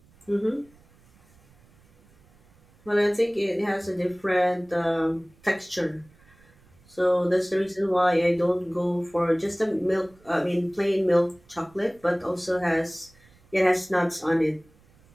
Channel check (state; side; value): noise; right; rumble, 30 dB below the sound